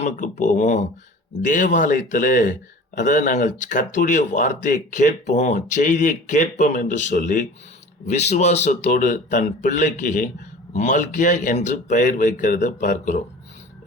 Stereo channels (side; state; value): both; normal; correlation 0.41